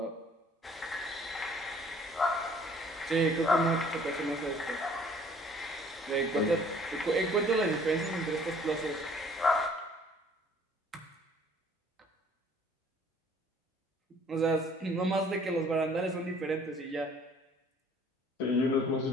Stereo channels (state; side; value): normal; both; correlation 0.57